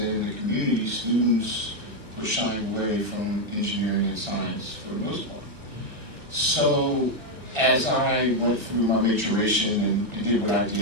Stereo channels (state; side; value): late; left; 1.4 ms